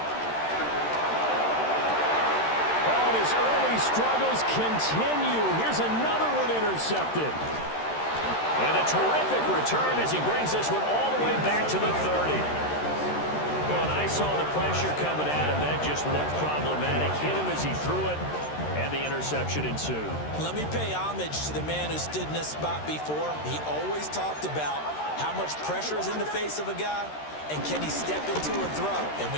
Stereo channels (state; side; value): late; right; 13 ms